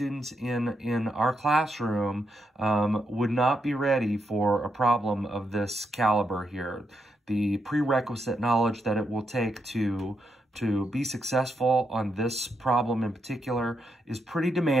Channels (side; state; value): both; normal; correlation 0.81